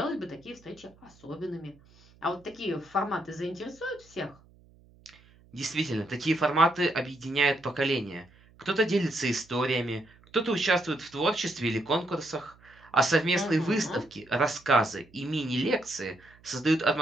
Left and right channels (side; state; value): right; noise; hum, 28 dB below the sound